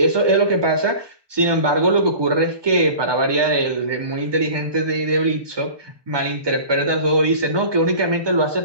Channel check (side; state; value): left; late; 1.2 ms